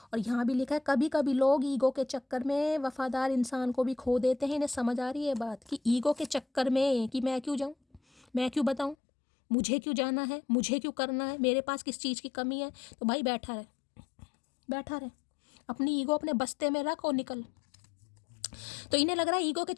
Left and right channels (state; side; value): drops out; right; at 9.0 s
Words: और यहाँ भी लिखा है कभी कभी लोग ईगो के चक्कर में वफादार इंसान को भी खो देते हैं। इन्हें समझ आ रही है बात कि ईगो के चक्कर में कि मैं क्यों जाऊँ, मैं क्यों बताऊँ, मुझे क्यों जाना है, मुझे क्यों करना है, मेरे पास किस चीज़ की कमी है। तो भाई बैठा रहे, अपनी ईगो अपने बस्ते में रख और निकल। तो इन्हें लग रहा है ईगो के